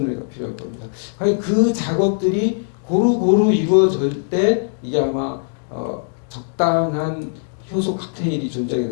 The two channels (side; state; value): right; silent; digital silence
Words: 애가 필요할 겁니다. 과연 그 작업들이 고루고루 이루어질 때 이게 아마 적당한 효소 칵테일이 존재하게